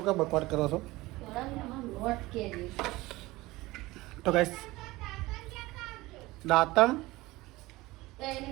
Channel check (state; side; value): quieter; left; 19.9 dB